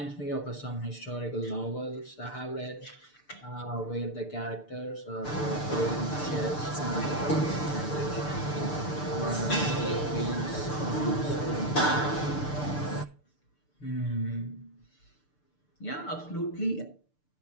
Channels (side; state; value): right; late; 6.7 ms